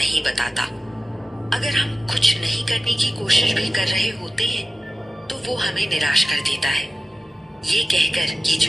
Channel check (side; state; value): both; normal; correlation 0.94